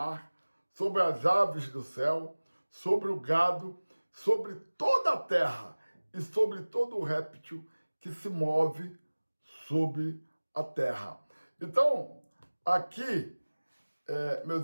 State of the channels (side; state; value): both; inverted; correlation -1.00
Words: sobre as aves do céu, sobre o gado, sobre toda a terra e sobre todo o réptil que se move sobre a terra. Então, aqui,